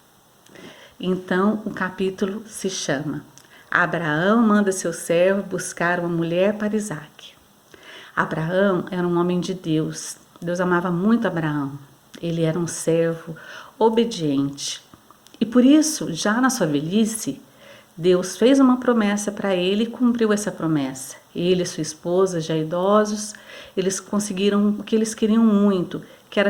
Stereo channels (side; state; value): both; identical; correlation 1.00